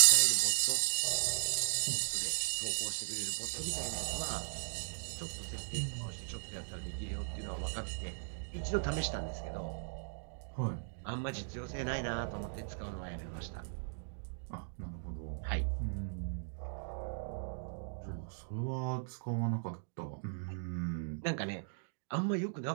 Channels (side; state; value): left; silent; digital silence